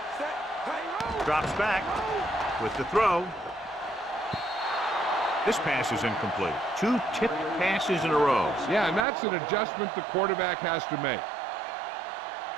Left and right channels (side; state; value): left; drops out; at 9.1 s